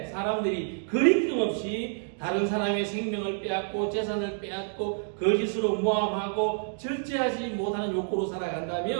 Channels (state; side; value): silent; left; digital silence